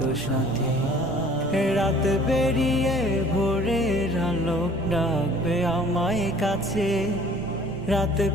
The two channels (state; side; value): noise; right; rumble, 18 dB below the sound